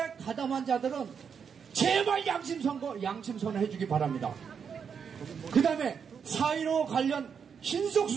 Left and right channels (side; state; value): left; quieter; 6.8 dB